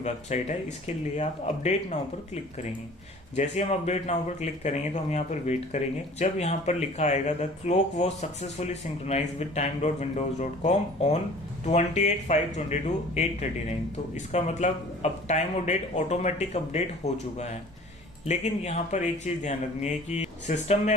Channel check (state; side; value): normal; both; correlation 0.47